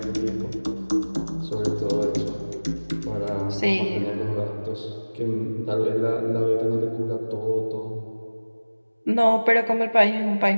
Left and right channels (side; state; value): both; inverted; correlation -1.00